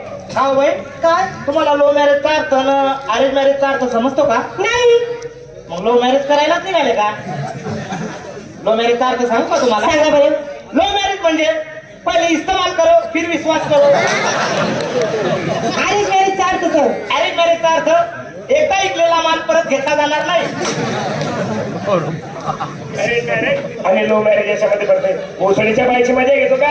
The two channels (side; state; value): both; identical; correlation 1.00